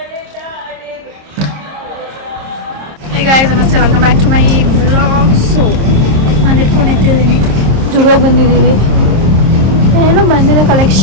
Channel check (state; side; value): late; left; 26 ms